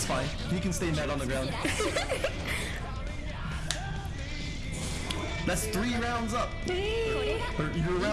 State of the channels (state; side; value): identical; both; correlation 1.00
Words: fine. You can stay mad on the ground. That's 3 rounds up. Or you're